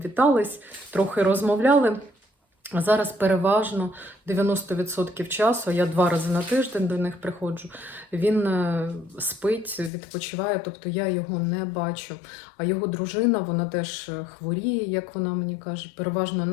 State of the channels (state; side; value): drops out; right; at 9.9 s